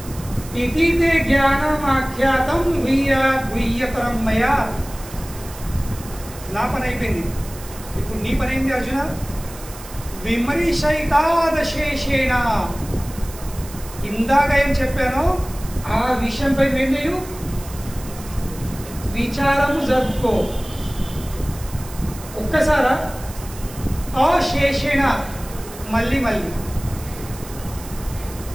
इतीते ज्ञानम आख्यातम गुह्यतरम मया. నా పని అయిపోయింది. ఇప్పుడు నీ పని ఏంటి అర్జున? విమరిషైతాదశేషేణ. ఇందాక ఏం చెప్పానో ఆ విషయంపై ఏం చేయు? విచారము జరుపుకో. ఒక్కసారా? అశేషేణ, మళ్ళీ మళ్ళీ.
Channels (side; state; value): right; noise; hiss, 16 dB below the sound